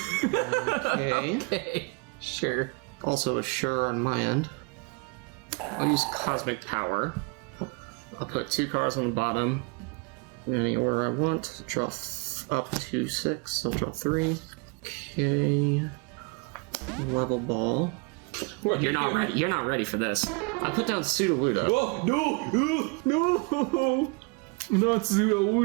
Okay. Okay, sure. Also a sure on my end. I'll use Cosmic Power. I'll put 2 cards on the bottom. In any order I want. Draw up to 6. I'll draw 3. Okay. Level Ball. You're not ready. You're not ready for this. I'll put down Sudowoodo. Oh, no! Not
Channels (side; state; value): left; quieter; 31.5 dB